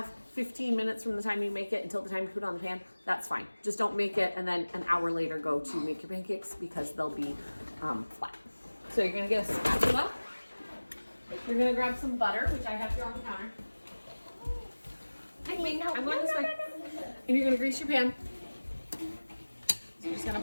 15 minutes from the time you make it until the time you put it on the pan, that's fine. Just don't make it and then an hour later go to make your pancakes because they'll be flat. So you're gonna get a spatula. You're gonna grab some butter, which I have here on the counter. I'm going this way. And you're gonna grease your pan. So you're just gonna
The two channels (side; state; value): both; inverted; correlation -1.00